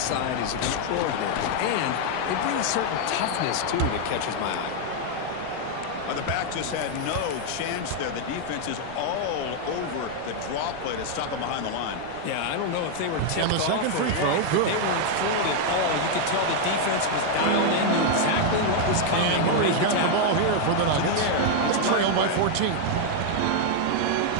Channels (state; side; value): different; both; correlation 0.00